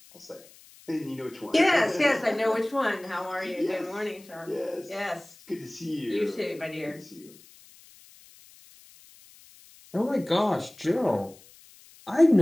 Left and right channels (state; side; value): noise; left; hiss, 24 dB below the sound